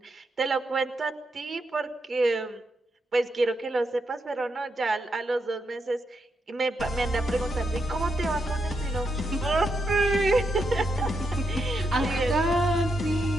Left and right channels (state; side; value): normal; both; correlation 0.82